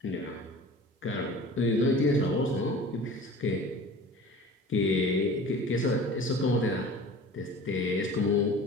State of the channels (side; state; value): both; normal; correlation 0.41